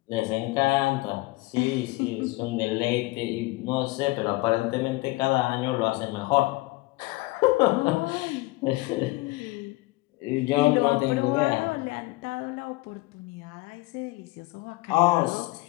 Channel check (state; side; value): quieter; right; 21.3 dB